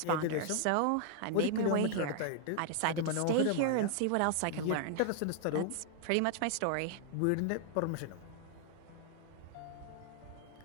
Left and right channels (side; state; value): both; different; correlation 0.00